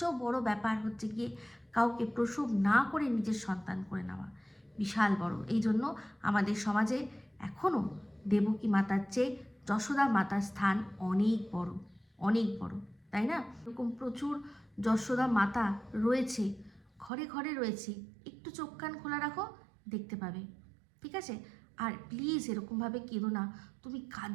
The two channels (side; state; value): left; drops out; at 17.1 s